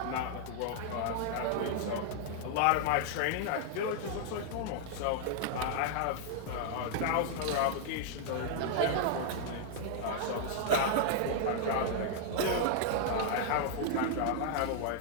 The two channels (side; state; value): both; different; correlation 0.00